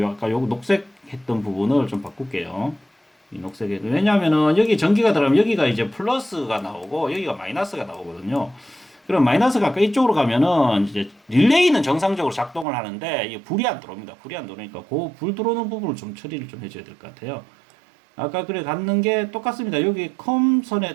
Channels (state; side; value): drops out; left; at 12.7 s